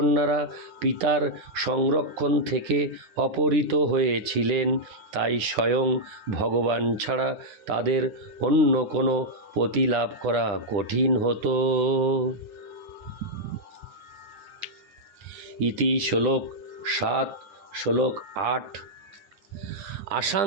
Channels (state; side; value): late; left; 10 ms